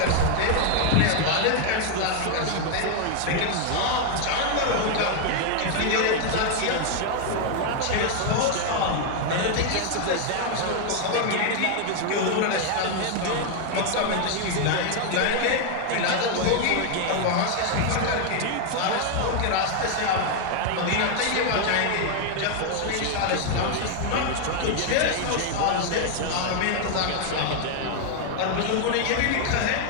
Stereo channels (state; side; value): different; both; correlation 0.00